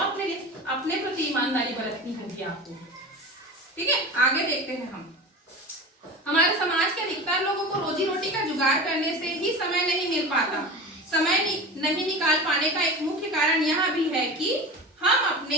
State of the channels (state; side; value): normal; both; correlation 0.31